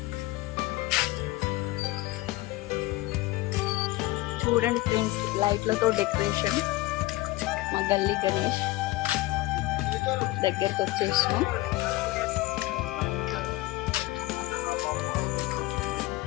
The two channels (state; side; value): quieter; right; 18.9 dB